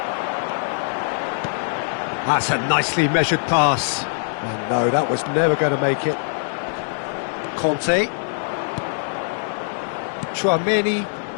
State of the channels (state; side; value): silent; right; digital silence